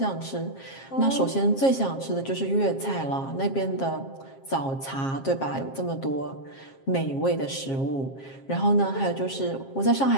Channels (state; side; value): late; right; 7.5 ms